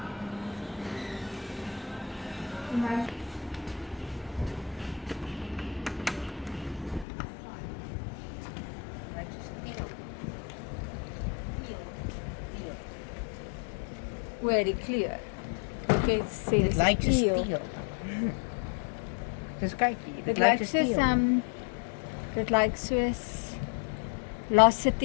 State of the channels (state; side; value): drops out; right; at 7.1 s